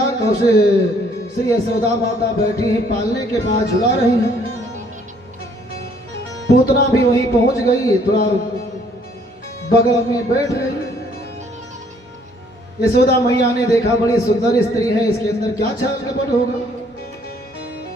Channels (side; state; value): both; normal; correlation 0.63